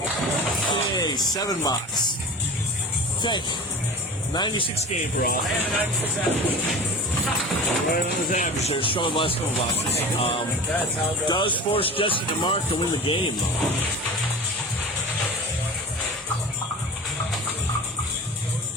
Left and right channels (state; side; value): normal; both; correlation 0.36